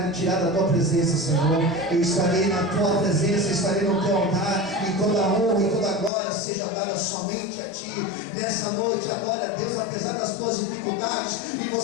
me tirar da tua presença, Senhor. Eu estarei na tua presença, estarei no teu altar, e toda a honra e toda a glória seja dada somente a ti. Nessa noite, adore a Deus apesar das tuas dificuldades, e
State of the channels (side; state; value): right; drops out; at 6.1 s